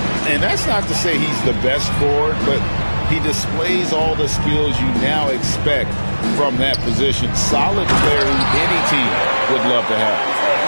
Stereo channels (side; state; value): both; inverted; correlation -1.00